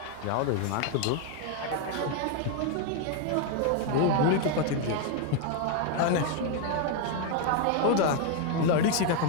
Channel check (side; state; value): both; different; correlation 0.01